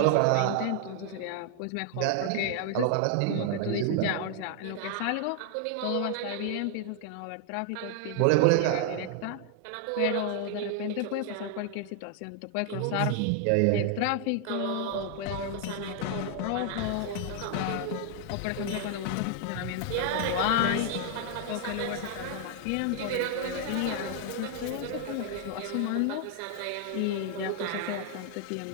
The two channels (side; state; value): both; different; correlation 0.00